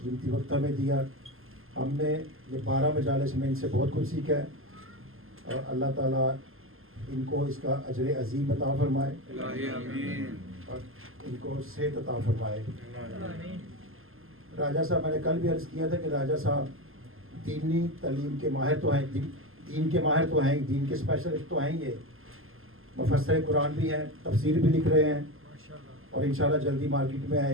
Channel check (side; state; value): left; late; 0.60 ms